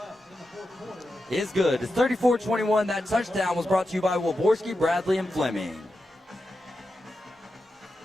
is good. It's 34-21. That touchdown was brought to you by Waborski, Bradley, and Fleming.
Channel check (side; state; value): both; normal; correlation 0.89